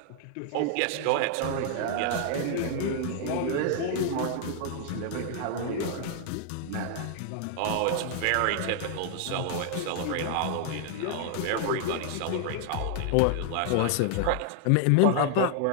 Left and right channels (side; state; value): both; different; correlation 0.00